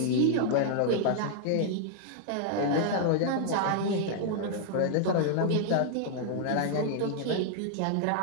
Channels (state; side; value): different; both; correlation -0.01